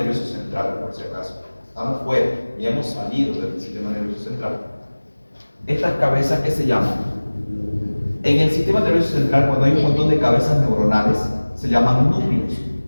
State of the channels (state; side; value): inverted; both; correlation -1.00